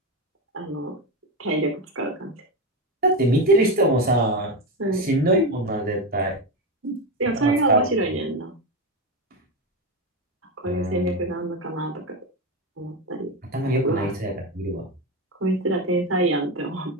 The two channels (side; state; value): both; normal; correlation 0.14